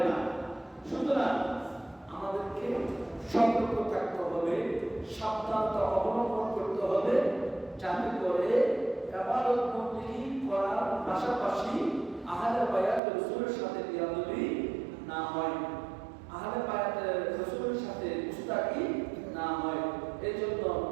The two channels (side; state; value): left; drops out; at 13.0 s